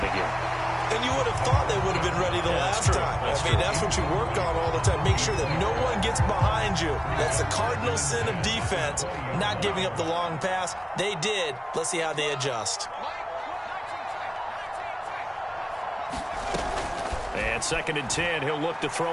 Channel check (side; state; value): both; identical; correlation 1.00